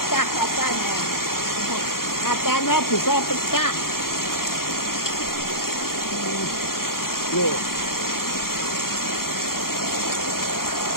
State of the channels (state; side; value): late; right; 0.92 ms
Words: kacanya. Kacanya bisa pecah. Loh.